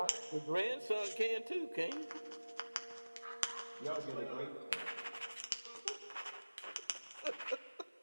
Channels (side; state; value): both; inverted; correlation -1.00